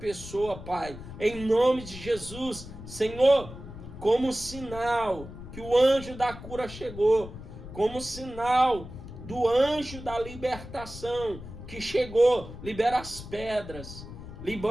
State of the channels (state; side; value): noise; left; rumble, 13 dB below the sound